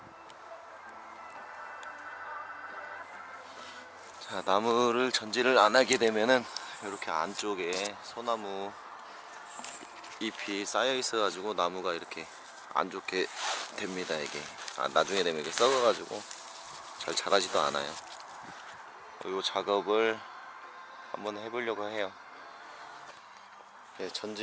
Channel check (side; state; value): both; identical; correlation 1.00